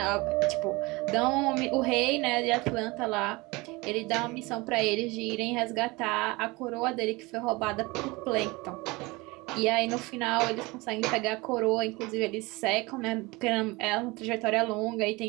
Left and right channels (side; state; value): left; quieter; 23.7 dB